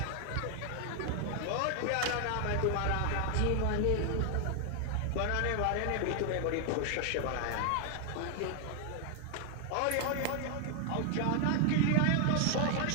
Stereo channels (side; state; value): both; different; correlation 0.00